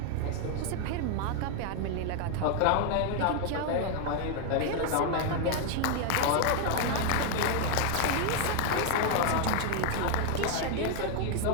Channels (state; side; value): different; both; correlation 0.01